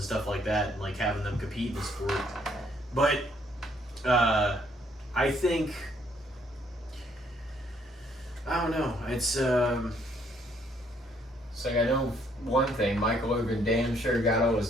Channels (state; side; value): normal; both; correlation 0.68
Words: stuff like that, and like having them compete in the sport. But I think I don't know. It's like I know one thing, Michael Irvin damn sure got